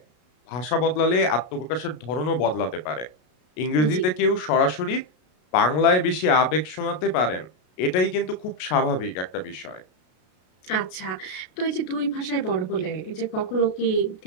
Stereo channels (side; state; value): right; late; 33 ms